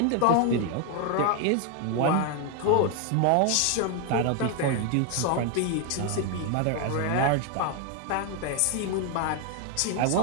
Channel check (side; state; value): both; different; correlation 0.01